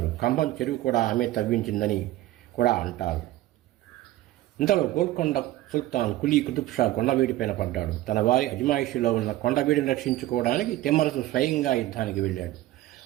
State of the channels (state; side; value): quieter; left; 15.7 dB